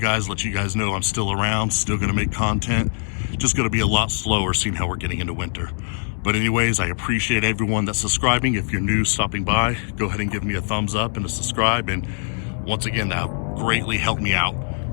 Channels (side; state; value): right; silent; digital silence